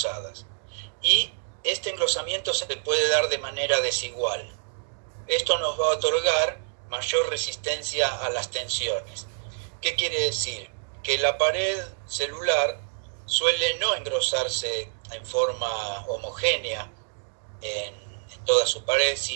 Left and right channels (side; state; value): left; silent; digital silence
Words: Y este engrosamiento se puede dar de manera desigual. Esto nos va a otorgar mayor resistencia a las tensiones. ¿Qué quiere decir? Que la pared celular suele no engrosarse en forma homogénea en toda su pared,